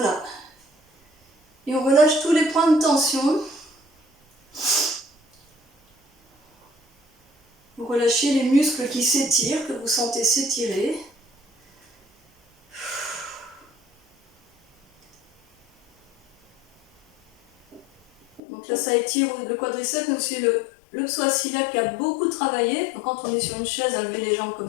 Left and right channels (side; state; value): right; drops out; at 18.4 s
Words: Et on relâche tous les points de tension. Vous relâchez les muscles qui s'étirent, que vous sentez s'étirer. Donc là, ça étire le quadriceps, mais aussi le psoas iliaque qui a beaucoup travaillé. Donc quand on est sur une chaise à lever les jambes comme